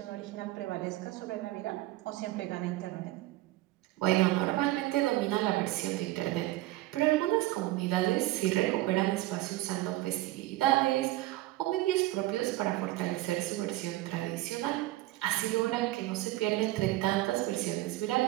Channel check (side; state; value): left; quieter; 17.4 dB